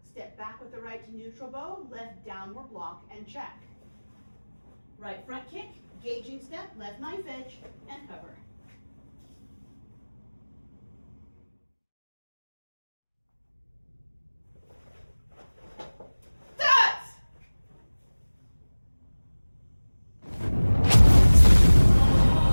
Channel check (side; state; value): both; inverted; correlation -1.00